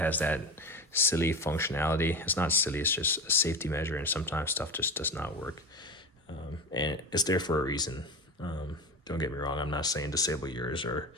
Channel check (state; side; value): normal; both; correlation 0.25